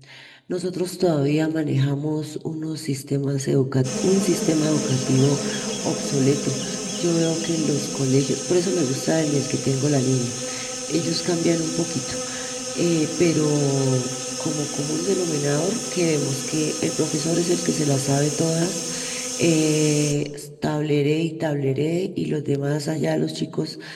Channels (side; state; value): both; identical; correlation 1.00